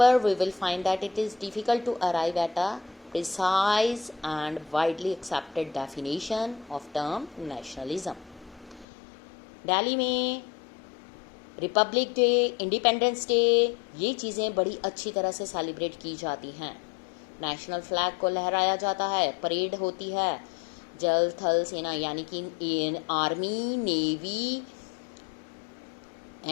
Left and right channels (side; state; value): right; drops out; at 8.8 s